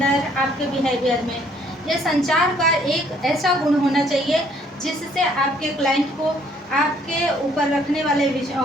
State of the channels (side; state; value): both; normal; correlation 0.63